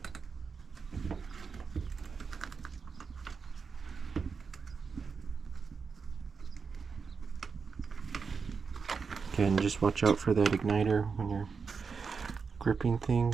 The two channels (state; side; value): quieter; left; 5.4 dB